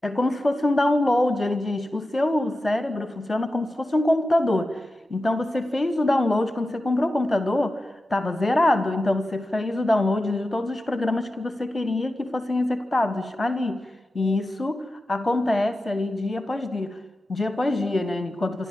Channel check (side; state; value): both; normal; correlation 0.92